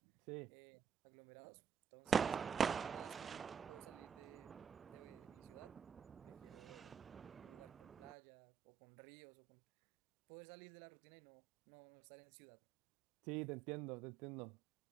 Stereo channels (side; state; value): left; quieter; 6.9 dB